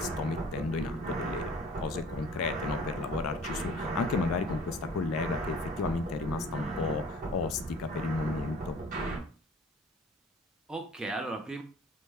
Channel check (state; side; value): normal; both; correlation 0.49